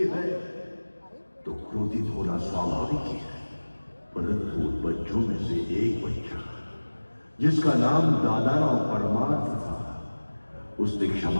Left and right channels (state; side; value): inverted; both; correlation -1.00